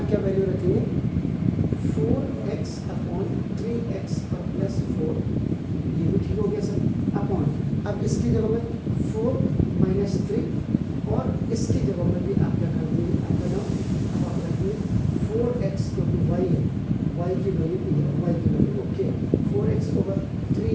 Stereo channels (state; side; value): identical; both; correlation 1.00